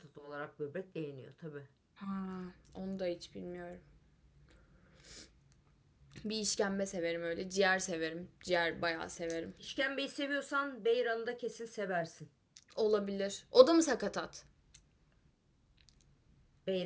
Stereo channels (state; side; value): identical; both; correlation 1.00